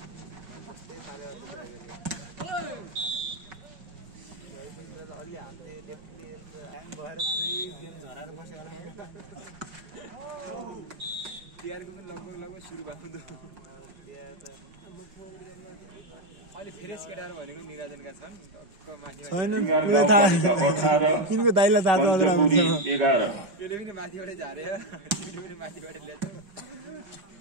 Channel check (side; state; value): left; late; 5.3 ms